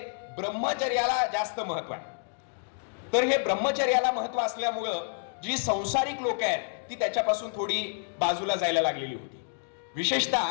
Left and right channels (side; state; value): right; silent; digital silence